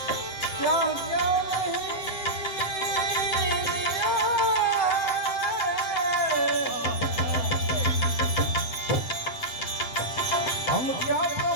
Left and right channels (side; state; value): right; late; 7.8 ms